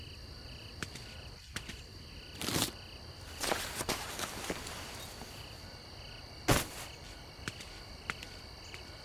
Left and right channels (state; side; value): identical; both; correlation 1.00